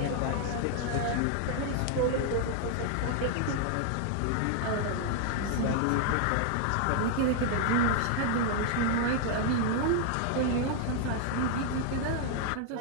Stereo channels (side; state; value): both; different; correlation 0.00